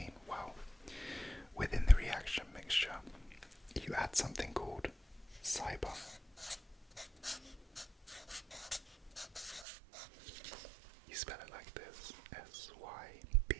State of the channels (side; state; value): left; drops out; at 9.7 s